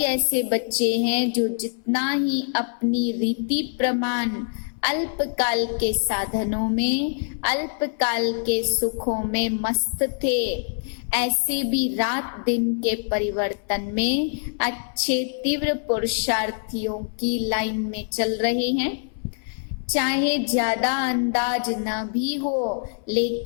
ऐसे बच्चे हैं जो जितना ही अपनी रीति प्रमाण अल्पकाल के साधनों में, अल्पकाल के सुखों में मस्त थे, ऐसे भी रात दिन के परिवर्तन में अच्छे तीव्र पुरुषार्थियों की लाइन में चल रहे हैं। चाहे ज्यादा अंदाज न भी हो,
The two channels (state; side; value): silent; right; 59 dB below the other